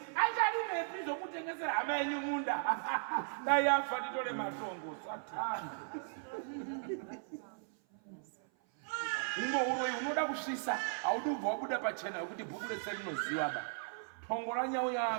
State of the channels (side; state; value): left; silent; 53 dB below the other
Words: acharimepi zvokutengesera hama yenyu munda dai afa nditore matongo satani uno uroyi unoda kusvisa haudi ubva wabuda pachena yokuti bhuku rese rinoziva ba tongo ranyau